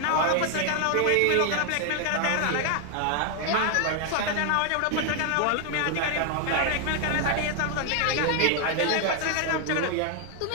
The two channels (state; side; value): different; both; correlation 0.00